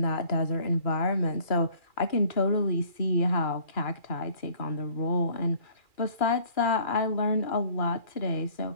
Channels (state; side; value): late; right; 2.4 ms